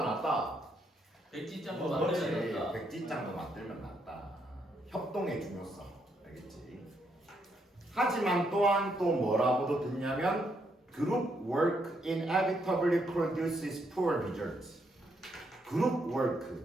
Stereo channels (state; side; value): normal; both; correlation 0.76